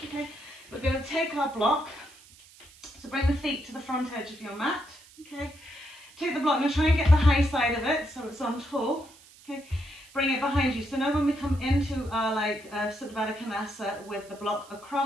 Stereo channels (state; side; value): noise; right; hiss, 23 dB below the sound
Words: Okay, we're going to take our block, so bring the feet to the front edge of your mat. Okay, take the block, and try and get the high side of it so it's on tall. Okay, bring it behind you. So now when we come into our Supta Baddha Konasana with the block